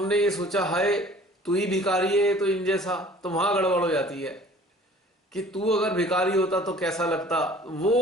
ये सोचा हाय तू ही भिखारी है तो इन जैसा, तो वहां गड़बड़ हो जाती है कि तू अगर भिखारी होता तो कैसा लगता,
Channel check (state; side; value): normal; both; correlation 0.50